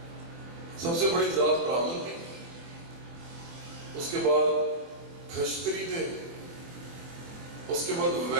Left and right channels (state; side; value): late; left; 24 ms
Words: سب سے بڑی ذات براہمن تھی، اس کے بعد کھشتری تھے، اس کے بعد